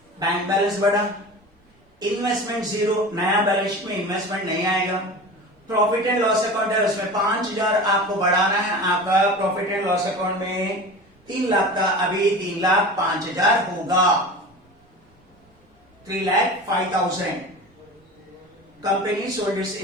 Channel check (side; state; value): both; normal; correlation 0.33